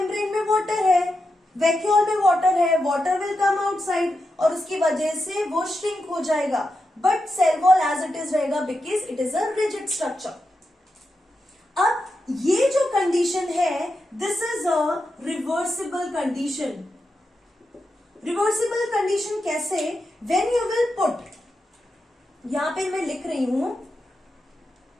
में water है, vacuole में water है, water will come outside और उसकी वजह से वो shrink हो जाएगा। But cell wall as it is रहेगा because it is a rigid structure. अब ये जो कंडीशन है, this is a reversible condition. Reversible condition कैसे? व्हेन यू विल पुट, यहां पे मैं लिख रही हूं,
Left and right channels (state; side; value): normal; both; correlation 0.87